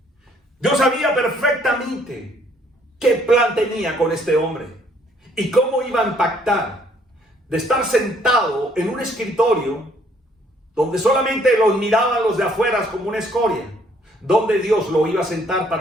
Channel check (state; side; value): normal; both; correlation 0.64